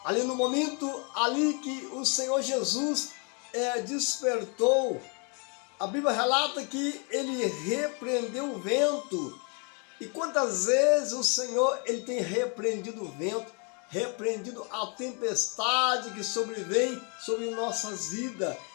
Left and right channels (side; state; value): right; quieter; 35.4 dB